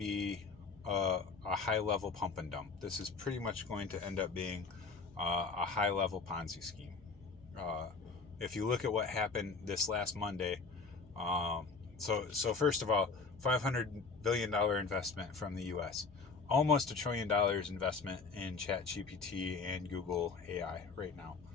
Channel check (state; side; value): quieter; right; 4.5 dB